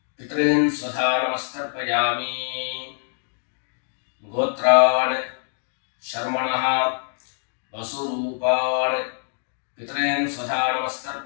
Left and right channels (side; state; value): right; silent; 60 dB below the other